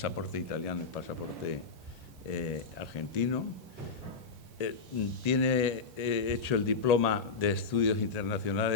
italiano y pasaporte argentino. Tiene hecho el diploma de Estudios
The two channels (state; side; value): quieter; right; 4.8 dB